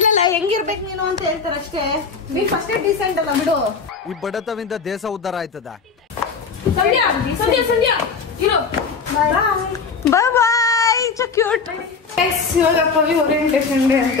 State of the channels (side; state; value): right; quieter; 5.1 dB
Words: ಹೆಂಗಿರ್ಬೇಕು ನೀನು ಅಂತ ಹೇಳ್ತಾರೆ ಅಷ್ಟೇ. ನೀ ಫಸ್ಟ್ ಡೀಸೆಂಟ್ ಅಲ್ಲ ಬಿಡು. ಈ ಬಡತವಿಂದ ದೇಶ ಉದ್ಧಾರ ಆಯ್ತದ. Bye bye. So cute. ಇವಾಗ ಪವಿ ಓರಿಯೆಂಟೇಷನ್ ಡೇ